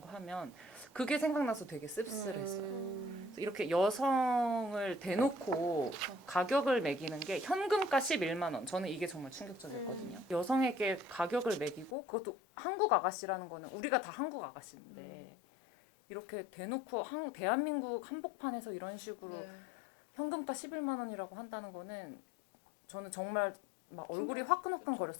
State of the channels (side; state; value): right; drops out; at 12.0 s